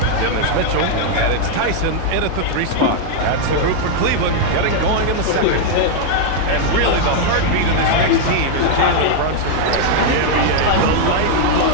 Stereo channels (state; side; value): different; both; correlation 0.00